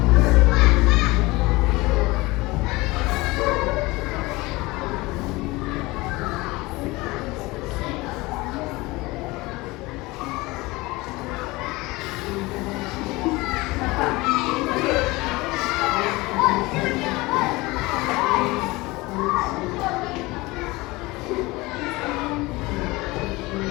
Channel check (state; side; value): quieter; right; 21.9 dB